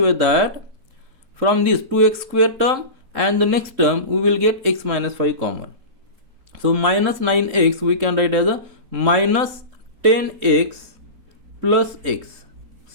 way that from this 2x square term and the next term we will get x minus 5 common. So minus 9x we can write as a minus 10x plus x.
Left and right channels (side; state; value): left; late; 3.7 ms